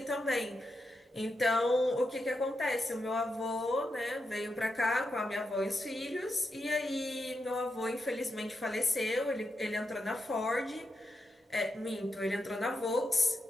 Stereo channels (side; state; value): both; normal; correlation 0.86